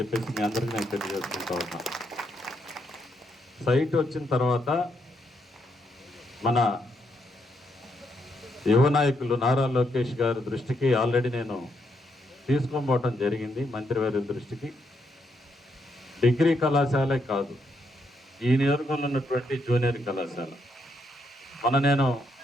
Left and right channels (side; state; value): both; normal; correlation 0.77